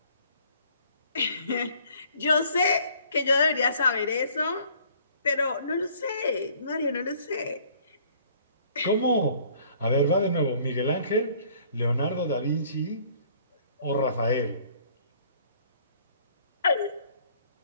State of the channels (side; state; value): both; inverted; correlation -0.57